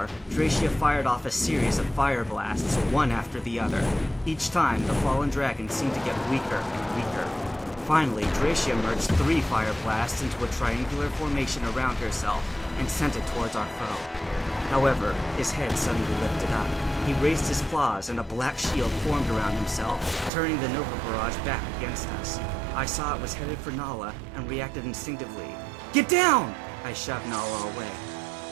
Dracia fired off a series of fire blasts, one after the other. Each time, the fallen dragon seemed to get weaker and weaker. Finally, Dracia merged 3 fire blasts into a triangular formation around herself and sent it towards our foe. However, his head suddenly lifted up. He raised his claws and a black shield formed around himself, turning the Nova Barrage back against us. I saw it was headed for Nala and reacted instinctively. Get down! I shoved Nala away.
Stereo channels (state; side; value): drops out; left; at 20.3 s